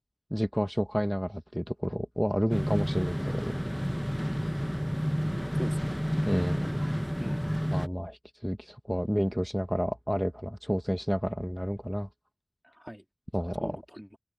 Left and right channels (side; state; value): both; identical; correlation 1.00